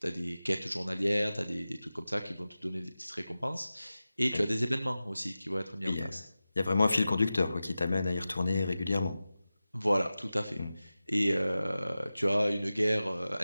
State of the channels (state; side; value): inverted; both; correlation -0.95